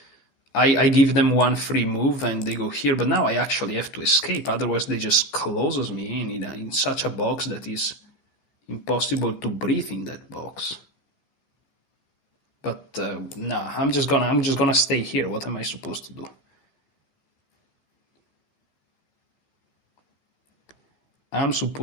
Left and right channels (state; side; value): late; right; 14 ms